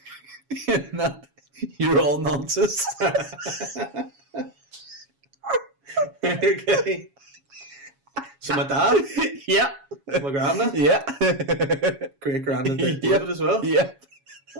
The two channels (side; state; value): left; late; 7.2 ms